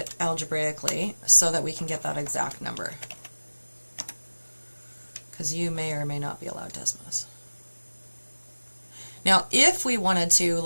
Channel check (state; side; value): inverted; both; correlation -1.00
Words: algebraically so that we can get that exact number. Because you may or may not be allowed Desmos. Now, if we wanted to